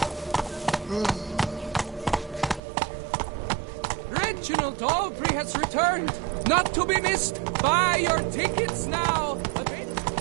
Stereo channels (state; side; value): drops out; left; at 2.6 s